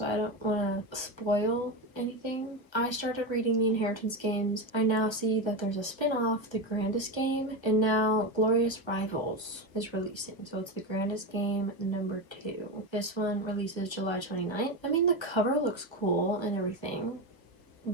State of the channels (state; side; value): late; right; 1.1 ms